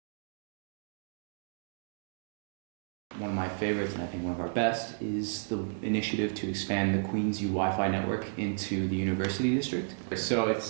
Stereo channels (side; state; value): left; silent; digital silence